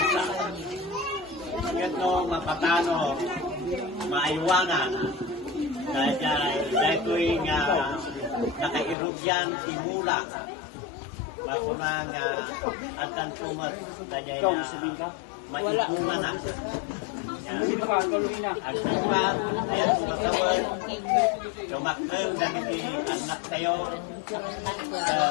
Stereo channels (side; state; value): right; drops out; at 9.0 s